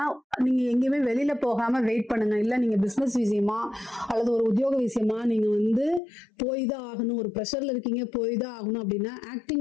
நீங்க எங்கேயுமே வெளியில போகாம வெயிட் பண்ணுங்க. இல்ல நீங்க பிசினஸ் விஷயமா அல்லது ஒரு உத்தியோக விஷயமா நீங்க போய் தான் ஆகணும், ஒரு ப்ரெஷர்ல இருக்கீங்க, போய் தான் ஆகணும் அப்படின்னா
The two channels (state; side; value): drops out; right; at 6.0 s